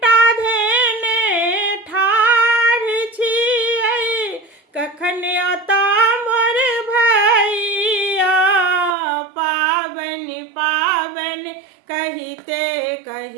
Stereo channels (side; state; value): left; drops out; at 9.0 s